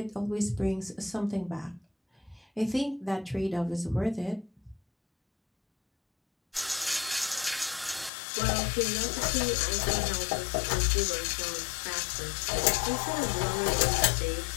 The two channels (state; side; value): drops out; right; at 8.1 s